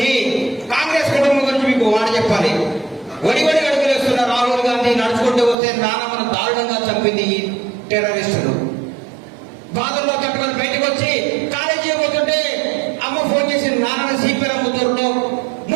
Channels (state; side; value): drops out; left; at 5.6 s